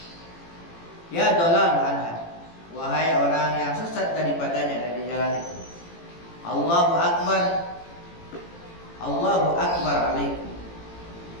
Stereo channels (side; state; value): right; late; 18 ms